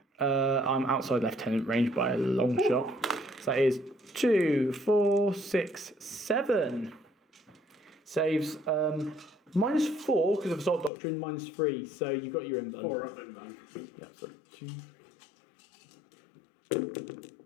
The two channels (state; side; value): drops out; right; at 10.9 s